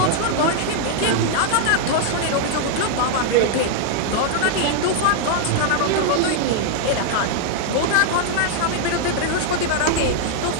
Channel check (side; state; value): both; different; correlation 0.00